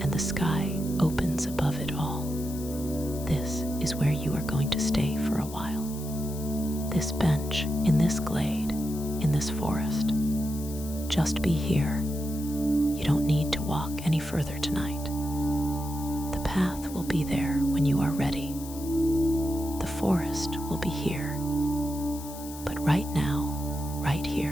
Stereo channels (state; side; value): noise; left; hiss, 14 dB below the sound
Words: and the sky opens above it all. This is where you are going to stay for a while. This bench, in this glade, in this forest. Just be here, You don't need to walk any further tonight. The path will be there when you are ready. The forest will be here. But right now, right